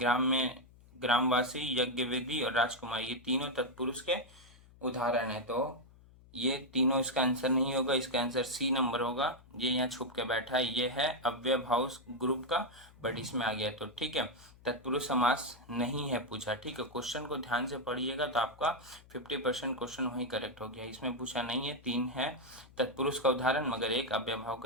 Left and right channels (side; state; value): left; noise; hum, 24 dB below the sound